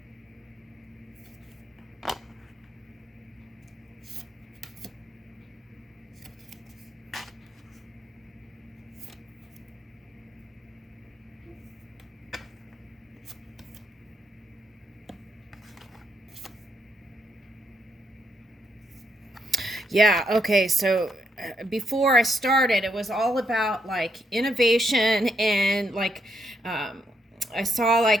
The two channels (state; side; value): normal; both; correlation 0.77